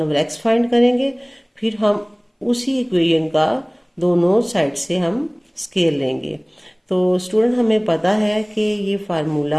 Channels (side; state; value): both; identical; correlation 1.00